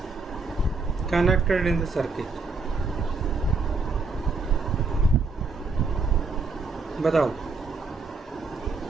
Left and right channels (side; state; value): left; quieter; 4.0 dB